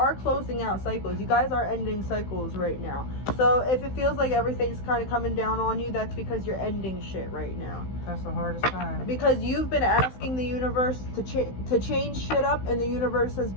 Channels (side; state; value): right; late; 16 ms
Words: closing out cycles. You guys are ending cycles right now. So if it feels like everything's kind of coming down on you, that's because you're ending shit right now. That's the hardest time. Because you've been asking the universe to change shit up, and the universe has